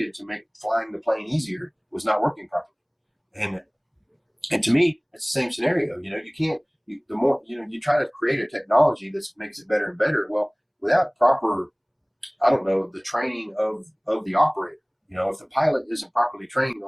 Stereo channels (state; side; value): identical; both; correlation 1.00